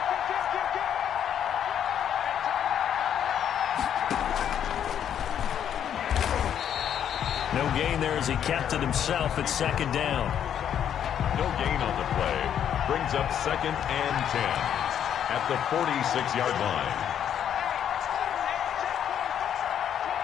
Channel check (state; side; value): quieter; right; 9.3 dB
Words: no gain there as he kept it himself at second down. No gain on the play. Brings up 2nd and 10 at the 46-yard line.